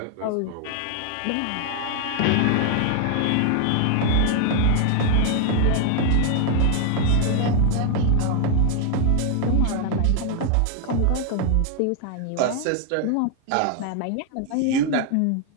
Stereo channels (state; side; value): different; both; correlation 0.00